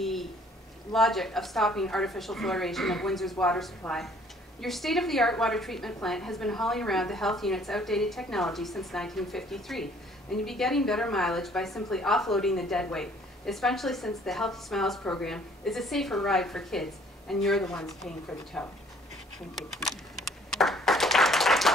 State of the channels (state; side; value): normal; both; correlation 0.59